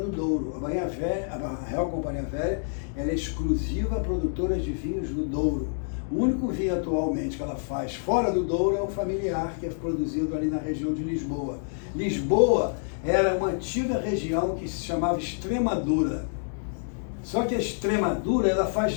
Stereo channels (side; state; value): right; silent; digital silence